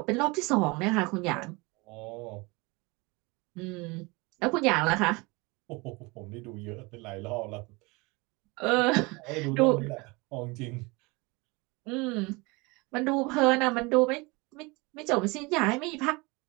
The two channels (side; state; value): left; quieter; 26.0 dB